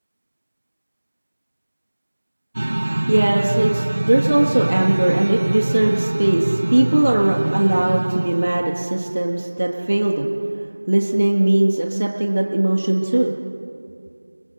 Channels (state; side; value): inverted; both; correlation -1.00